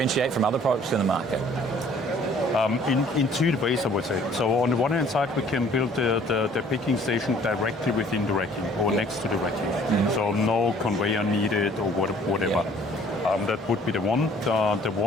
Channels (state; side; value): normal; both; correlation 0.56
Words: from other products in the market? In 2 ways, I would say. So on the one hand side, we can build the picking station directly within the racking or next to the racking. So no conveyor needed or whatever. That would be the one